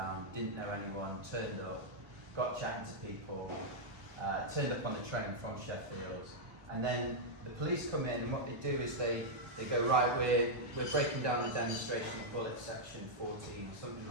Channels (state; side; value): late; left; 1.4 ms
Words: didn't know anyone, turned up, got chatting to people, turned up on the train from Sheffield, and then the police come in, and what they do is they go, right, we're breaking down the demonstration of bullet section 14, something